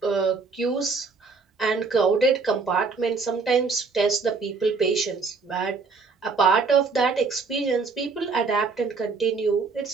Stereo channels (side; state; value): left; quieter; 4.6 dB